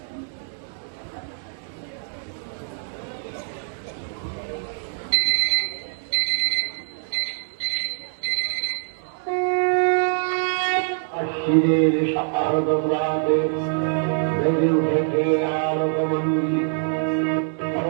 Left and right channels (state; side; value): silent; left; 62 dB below the other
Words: আশ্বিনের শারদম রাতে বেজে উঠেছে আলোকমঞ্জি,